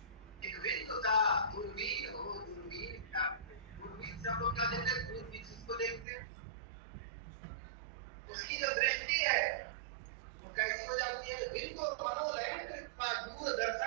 एक बिंदु का दूरबीन हो, दूरबीन क्या, दूरबीन से हम लोग क्या देखते हैं? दूरबीन जिसको देखते हैं उसकी जो दृष्टि है वो कैसी हो जाती है? बिंदु मनोलयन कृत्वा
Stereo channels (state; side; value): drops out; left; at 6.1 s